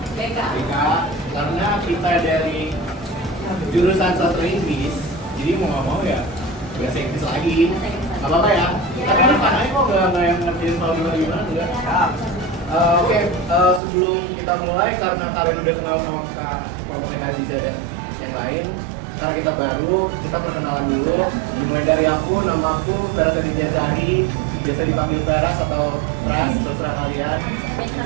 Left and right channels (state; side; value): drops out; left; at 13.8 s